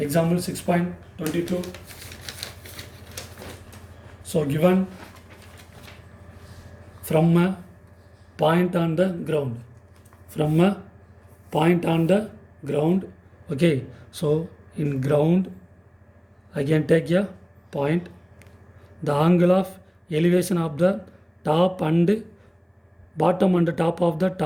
6.22. So given from a point on the ground. From a point on the ground. Okay, so in ground I can take a point. The angle of elevation of the top and bottom and top of the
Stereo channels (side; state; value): both; identical; correlation 1.00